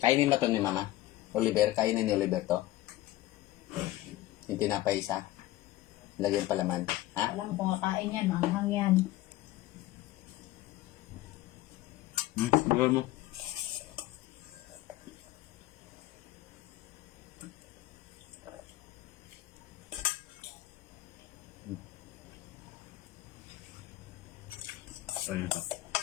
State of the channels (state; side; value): quieter; right; 16.4 dB